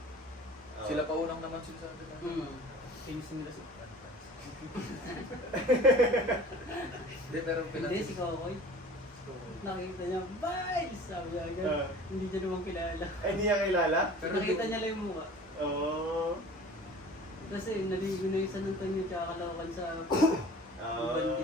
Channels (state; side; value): normal; both; correlation 0.43